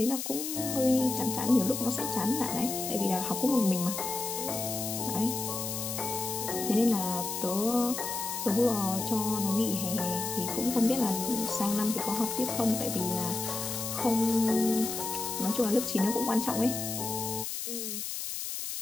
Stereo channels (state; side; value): noise; left; hiss, 5 dB below the sound